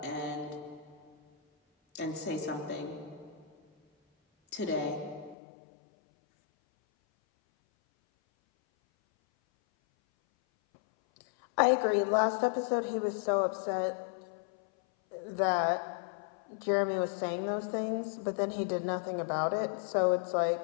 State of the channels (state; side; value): drops out; right; at 5.4 s